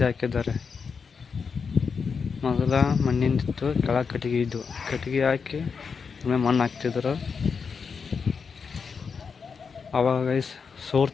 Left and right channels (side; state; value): right; quieter; 5.7 dB